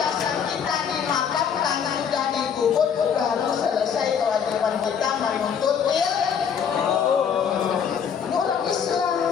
kita dimakan karena sudah dikubur, baru selesai kewajiban kita menuntut ilmu. Ini orang Islam.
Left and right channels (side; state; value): right; quieter; 7.4 dB